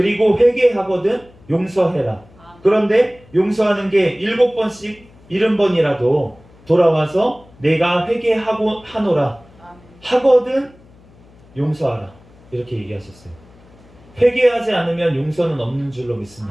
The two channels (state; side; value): noise; left; hum, 27 dB below the sound